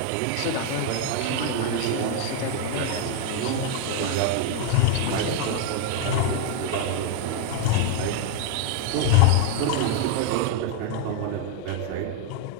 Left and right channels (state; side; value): different; both; correlation 0.00